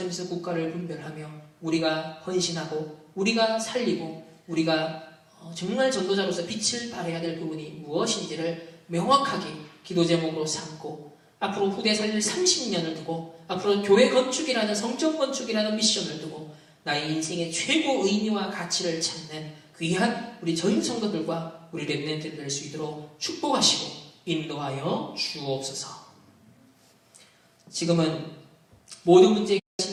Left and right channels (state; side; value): identical; both; correlation 1.00